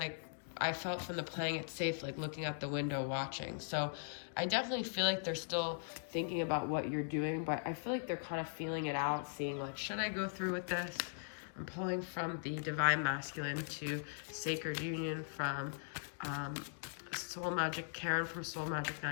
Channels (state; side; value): silent; right; digital silence